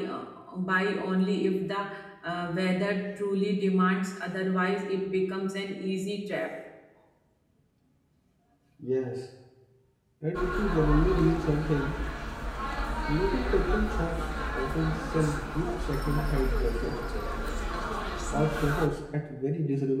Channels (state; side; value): identical; both; correlation 1.00